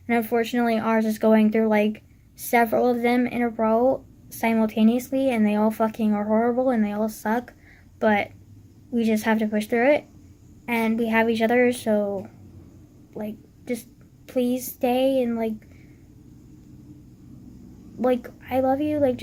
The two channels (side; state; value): both; identical; correlation 1.00